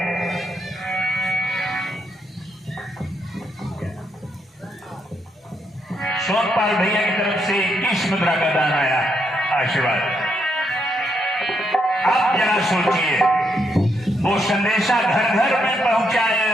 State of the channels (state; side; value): normal; both; correlation 0.78